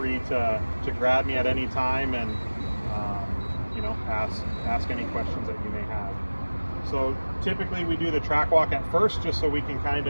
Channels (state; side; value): inverted; both; correlation -1.00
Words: to grab me at any time and you know, ask any questions that you may have. So typically we do the track walk at first, just so we can kind